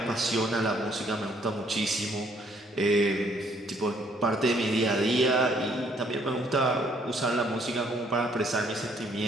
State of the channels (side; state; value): both; normal; correlation 0.66